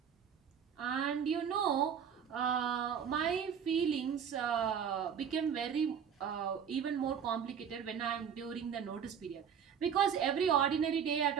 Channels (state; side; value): quieter; left; 7.8 dB